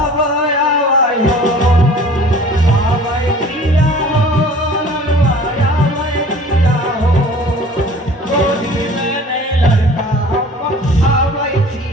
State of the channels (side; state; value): both; normal; correlation 0.47